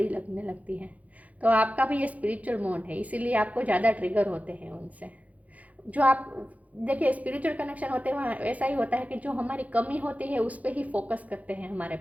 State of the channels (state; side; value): late; left; 0.071 ms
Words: लगने लगती है। तो आपका भी ये स्पिरिचुअल मोड है, इसीलिए आपको ज़्यादा ट्रिगर होते हैं उनसे। जो आप देखिए, स्पिरिचुअल कनेक्शन होते हैं वहाँ ऐसा ही होता है कि जो हमारी कमी होती है उस पर ही फोकस करते हैं हमारे